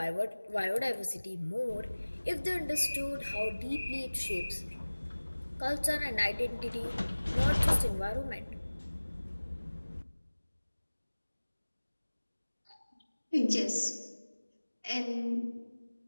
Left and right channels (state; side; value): inverted; both; correlation -1.00